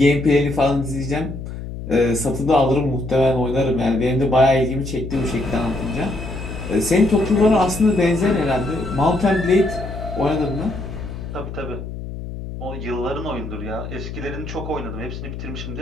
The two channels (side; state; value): left; noise; hum, 9 dB below the sound